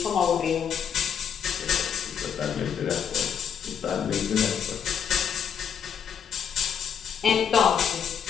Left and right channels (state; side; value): quieter; right; 7.8 dB